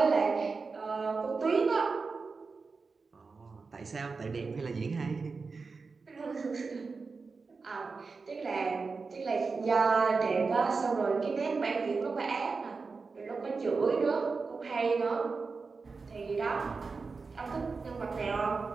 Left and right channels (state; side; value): quieter; left; 4.5 dB